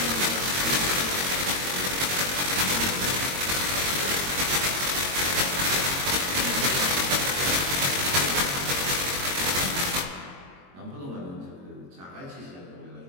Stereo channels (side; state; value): left; late; 22 ms